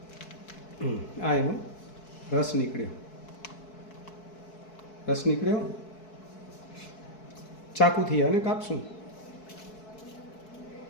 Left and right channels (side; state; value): right; late; 4.6 ms